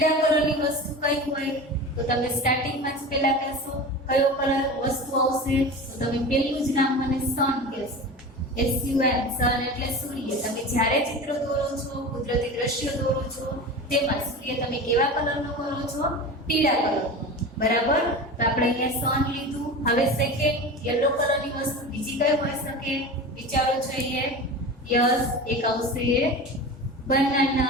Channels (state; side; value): normal; both; correlation 0.31